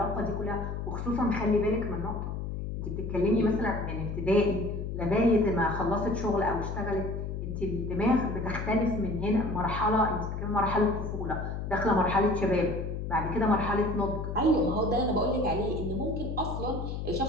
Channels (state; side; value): noise; left; hum, 5 dB below the sound